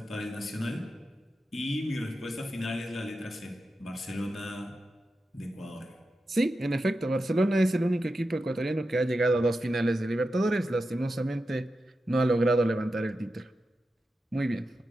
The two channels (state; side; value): normal; both; correlation 0.90